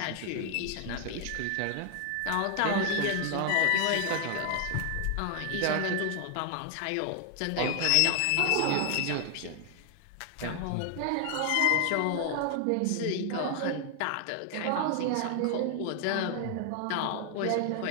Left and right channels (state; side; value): different; both; correlation 0.00